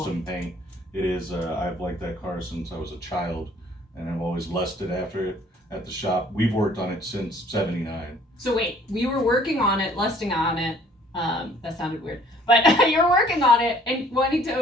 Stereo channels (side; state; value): both; normal; correlation 0.56